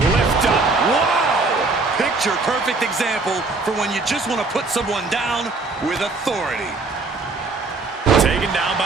lift up. Wow! Picture perfect example for when you just want to put someone down with authority. Taken down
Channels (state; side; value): quieter; left; 3.7 dB